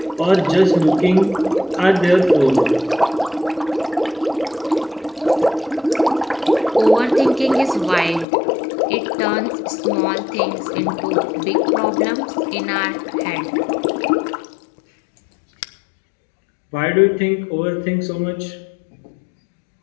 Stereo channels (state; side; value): drops out; right; at 8.2 s